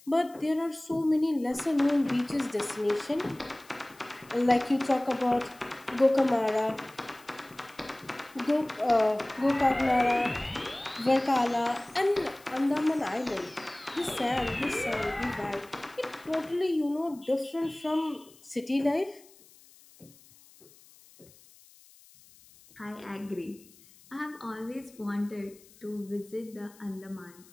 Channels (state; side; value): noise; left; hiss, 25 dB below the sound